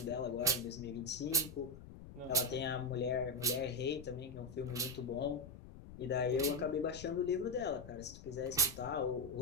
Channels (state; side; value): noise; left; rumble, 14 dB below the sound